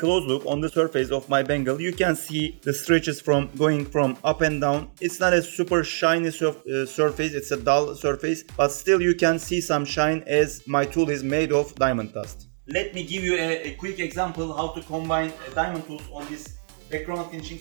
look on the surface of my bangle. You can see the stretches from going from up and down. It's not a super shiny surface, it's a dull surface, but still you can see some shine as my tool is made of diamond dust. Let me give you a quick example how to combine diamond tools on this background finishing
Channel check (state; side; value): silent; left; digital silence